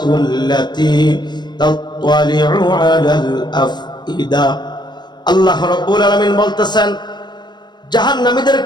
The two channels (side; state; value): right; late; 0.21 ms